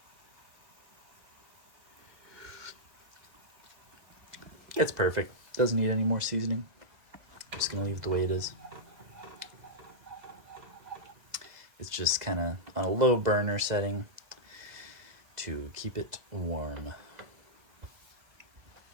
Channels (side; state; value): left; late; 2.0 ms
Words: It's perfect. Doesn't need any more seasoning. I'm just gonna leave it the way it is. It's just kind of on a low burner setting to keep it warm.